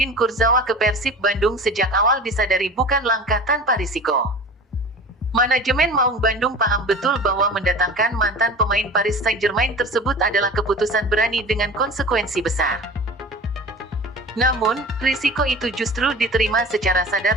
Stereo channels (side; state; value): both; normal; correlation 0.37